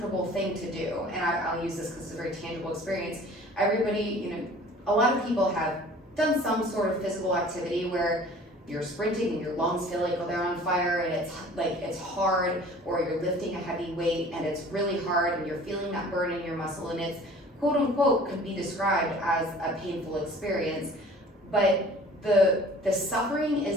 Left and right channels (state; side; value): normal; both; correlation 0.48